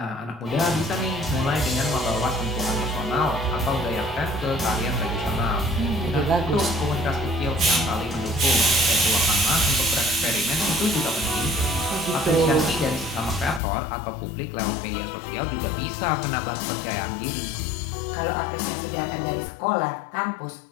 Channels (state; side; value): drops out; right; at 13.6 s